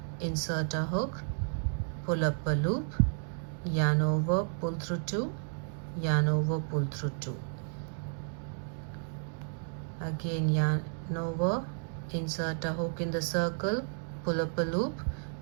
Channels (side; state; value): left; silent; 56 dB below the other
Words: insert a hook, pull up a loop, yarn over, pull through 2, yarn over, pull through 2. Again yarn over, insert a hook in the circle, pull up a loop,